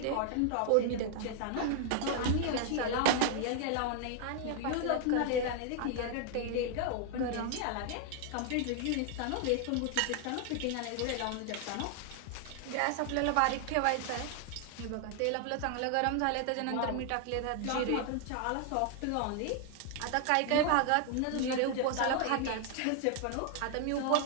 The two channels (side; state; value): both; different; correlation 0.00